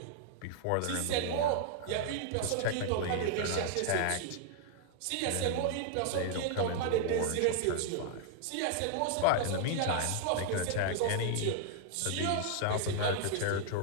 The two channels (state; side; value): different; both; correlation 0.00